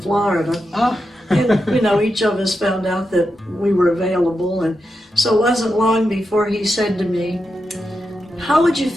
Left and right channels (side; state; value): both; normal; correlation 0.87